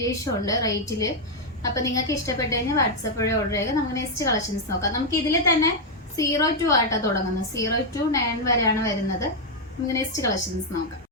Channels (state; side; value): normal; both; correlation 0.00